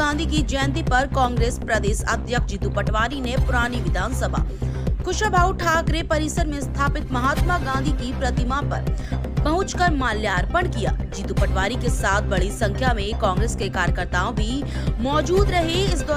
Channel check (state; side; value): identical; both; correlation 1.00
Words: की जयंती पर कांग्रेस प्रदेश अध्यक्ष जीतू पटवारी ने पुरानी विधानसभा कुशाभाऊ ठाकरे परिसर में स्थापित महात्मा गांधी की प्रतिमा पर पहुंचकर माल्यार्पण किया। जीतू पटवारी के साथ बड़ी संख्या में कांग्रेस के कार्यकर्ताओं भी मौजूद रहे। इस